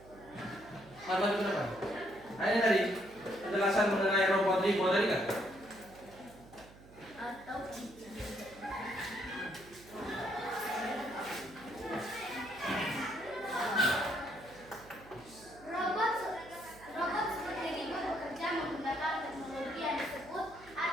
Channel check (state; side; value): noise; right; hum, 21 dB below the sound